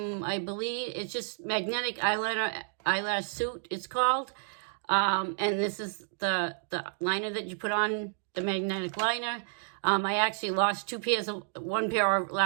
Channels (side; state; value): left; silent; digital silence